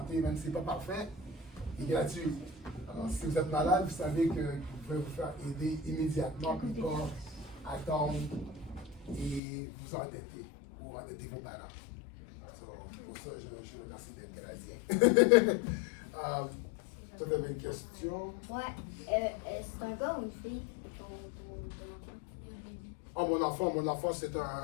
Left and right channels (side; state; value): right; drops out; at 9.4 s